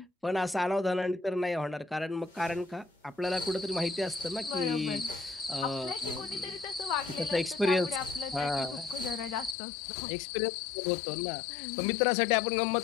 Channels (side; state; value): right; drops out; at 9.6 s